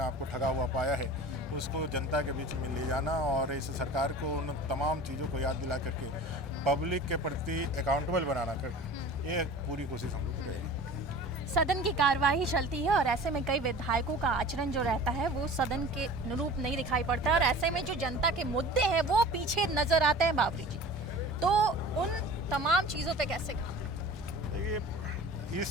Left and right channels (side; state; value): both; normal; correlation 0.40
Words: आप को ठगा हुआ पाया है, उसको जनता के बीच में ले जाना और इस सरकार को उन तमाम चीज़ों को याद दिला करके पब्लिक के प्रति अकाउंटेबल बनाना कर, ये पूरी कोशिश हम लोग की रहेगी। सदन की कार्यवाही चलती है और ऐसे में कई विधायकों का आचरण जो रहता है वो सदन के अनुरूप नहीं दिखाई पड़ता है, और ऐसे में जो जनता के मुद्दे हैं वो पीछे नजर आते हैं। बावरी जी, तो उन तमाम चीज़ों पे कैसे कहा? देखिए,